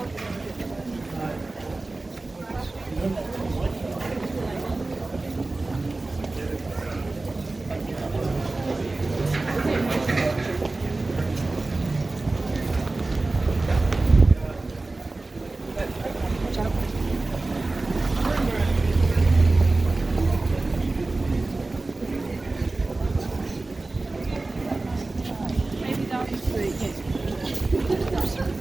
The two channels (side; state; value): left; quieter; 3.2 dB